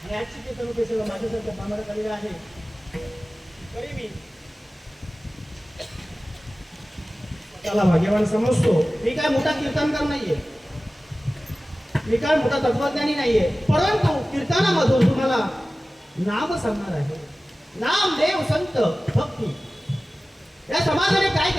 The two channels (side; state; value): both; normal; correlation 0.96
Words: आजची कीर्तन रूपी सेवा माझ्यासाठी आम्हाकडे आलेली आहे. तरी मी त्याला भाग्यवान समजतो. मी काय मोठा कीर्तनकार नाहीये मी काय मोठा तत्वज्ञानी नाहीये परंतु कीर्तनामधून तुम्हाला नाम सांगणार आहे. नाम देव संत भक्ती या समाजाने काय